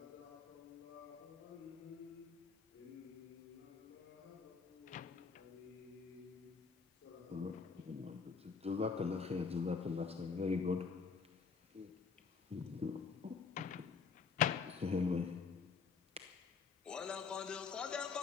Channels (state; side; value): quieter; right; 5.4 dB